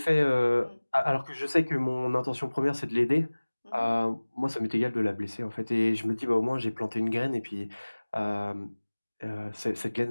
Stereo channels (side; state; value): both; inverted; correlation -1.00